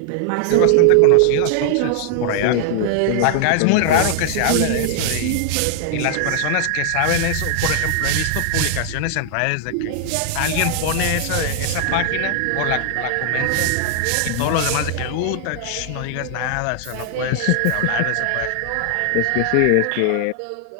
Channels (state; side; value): different; both; correlation 0.00